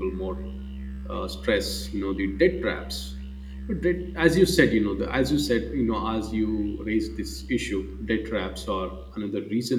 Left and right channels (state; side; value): identical; both; correlation 1.00